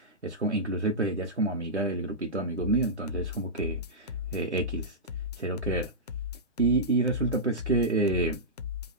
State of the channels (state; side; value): normal; both; correlation -0.13